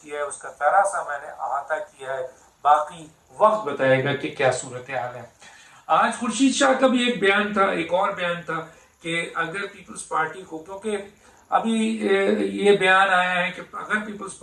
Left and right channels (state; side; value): identical; both; correlation 1.00